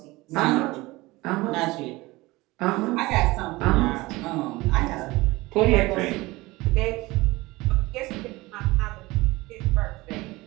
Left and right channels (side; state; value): left; quieter; 20.9 dB